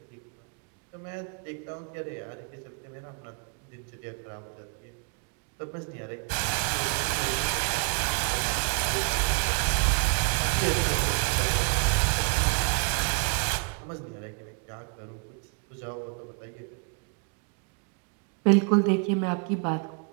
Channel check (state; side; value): quieter; left; 38.5 dB